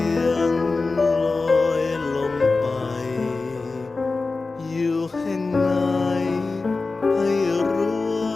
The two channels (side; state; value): right; quieter; 3.8 dB